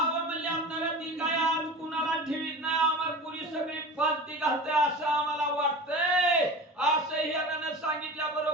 म्हणले आपल्याला ती काय आज कुणाला ठेवीत नाही, आम्हाला पुरी सगळी फालती घालते असं आम्हाला वाटतंय. असं हिरानं सांगितल्या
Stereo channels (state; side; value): normal; both; correlation 0.33